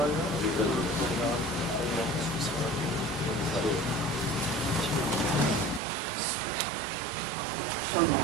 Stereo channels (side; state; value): left; drops out; at 5.8 s